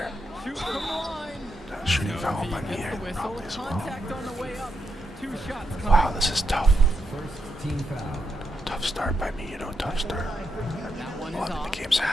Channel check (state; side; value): normal; both; correlation 0.81